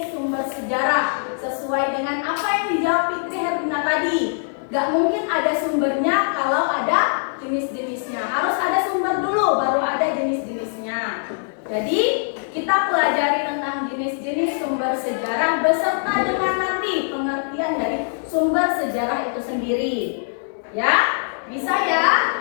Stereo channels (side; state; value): right; silent; digital silence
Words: sumber sejarah sesuai dengan apa yang dijawab Fitri Herlina tadi. Gak mungkin ada sumbernya kalau ada jenis-jenisnya. Harus ada sumber dulu baru ada jenis-jenisnya. Jadi kita pelajari tentang jenis-jenis sumber sejarah beserta dengan nanti pengertian dari sumber sejarah itu sendiri. Ya? Bisa ya?